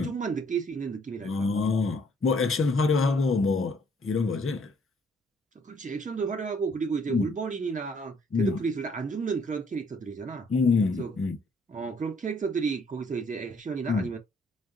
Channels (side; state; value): both; normal; correlation 0.64